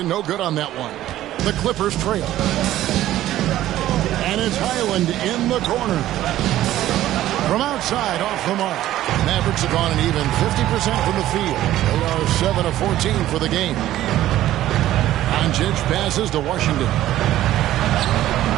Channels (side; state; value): left; quieter; 13.8 dB